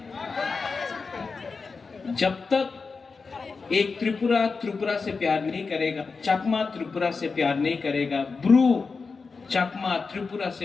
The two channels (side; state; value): right; quieter; 4.6 dB